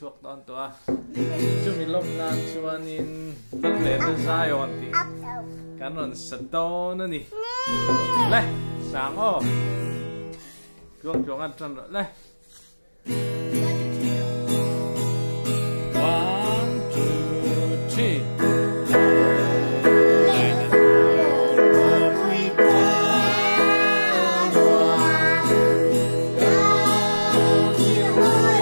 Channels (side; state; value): both; inverted; correlation -1.00